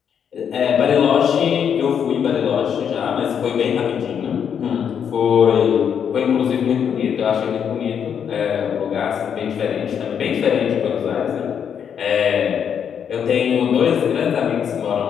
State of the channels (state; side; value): quieter; right; 7.9 dB